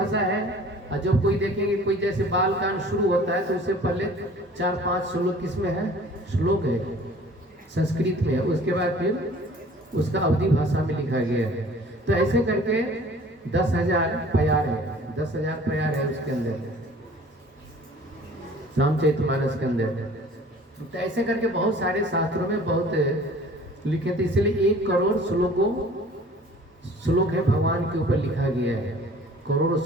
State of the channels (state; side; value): normal; both; correlation 0.49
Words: है। और जब कोई देखेंगे कोई जैसे बाल कांड शुरू होता है तो उससे पहले 4-5 श्लोक किस में है? श्लोक है, संस्कृत में है। उसके बाद फिर उसका अवधी भाषा में लिखा गया है। तो ऐसे करके 10,000 प्यार है, 10,000 प्यार है उसके अंदर, रामचरितमानस के अंदर। तो ऐसे करके बहुत सारे शास्त्रों में बहुत लिखे थे, इसलिए 1 करोड़ श्लोक है भगवान के ऊपर लिखा गया है। करोड़ों